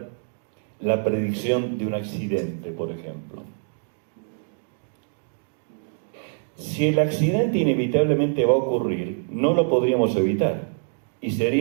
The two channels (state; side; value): silent; left; digital silence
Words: la predicción de un accidente, por ejemplo? Si el accidente inevitablemente va a ocurrir, no lo podríamos evitar y